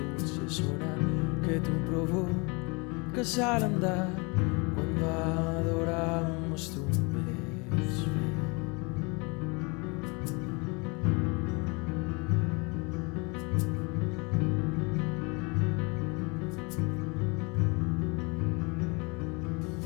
sonar que tú provocas al andar cuando adoramos tu ves.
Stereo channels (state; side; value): quieter; right; 29.6 dB